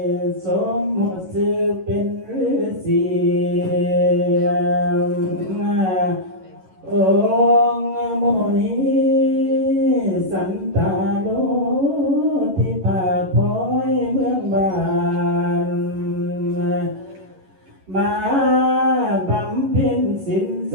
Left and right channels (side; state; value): left; late; 11 ms